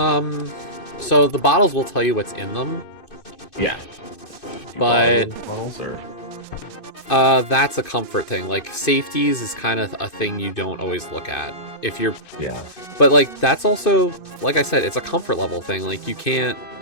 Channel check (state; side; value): late; right; 2.5 ms